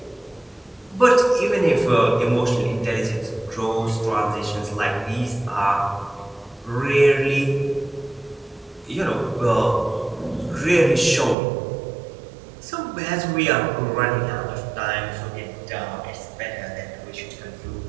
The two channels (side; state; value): left; drops out; at 11.4 s